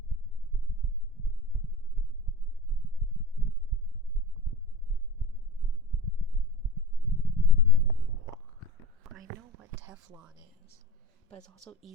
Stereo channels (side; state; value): both; normal; correlation 0.34